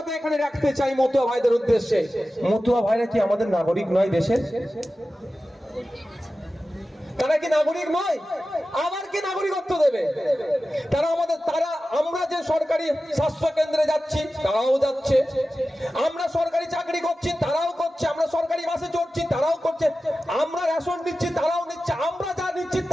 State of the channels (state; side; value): normal; both; correlation 0.94